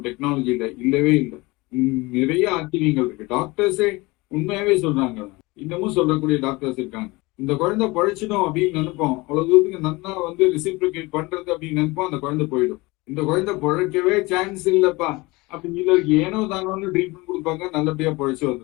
டெக்னாலஜியில இல்லவே இல்லை, நிறைய ஆச்சரியங்கள் இருக்கு. டாக்டர்ஸே உண்மையாவே சொல்றாங்க, இன்னமும் சொல்லக்கூடிய டாக்டர்ஸ் இருக்காங்க. இந்த குழந்தை பழைச்சிடும் அப்படின்னு நினைப்போம், அவ்வளவு தூரத்துக்கு நன்னா வந்து ரிசிப்ரிகேட் பண்றது அப்படின்னு நினைப்போம், அந்த குழந்தை போயிடும். இந்த குழந்தை பழைக்கவே சான்ஸ் இல்லப்பா அப்படின்னு சொல்லி ஏனோ தானோன்னு ட்ரீட்மெண்ட் கொடுப்பாங்க, நல்லபடியா பழைச்சு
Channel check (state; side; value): quieter; right; 23.0 dB